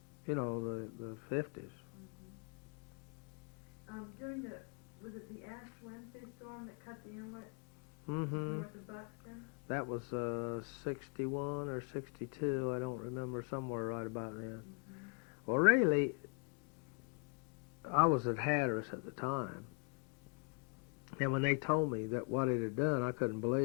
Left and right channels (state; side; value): quieter; right; 35.0 dB